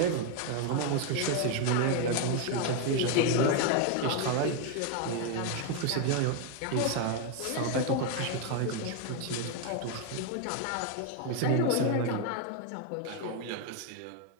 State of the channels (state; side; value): different; both; correlation 0.01